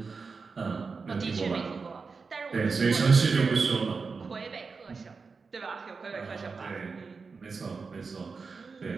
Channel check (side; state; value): left; quieter; 4.7 dB